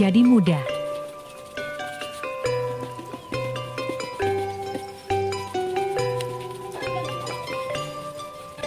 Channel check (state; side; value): identical; both; correlation 1.00